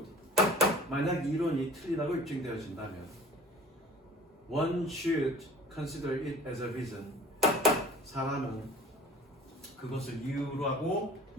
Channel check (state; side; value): normal; both; correlation 0.44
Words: 만약 이론이 틀리다고 입증되어진다면, one should consider it as a reason. 사람은 그것을 이유라고